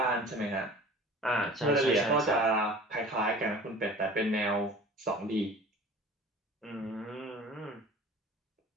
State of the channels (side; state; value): both; normal; correlation 0.43